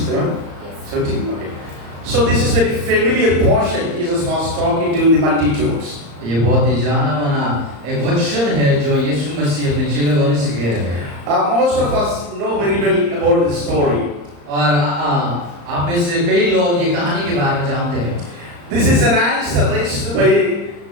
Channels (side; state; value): left; late; 35 ms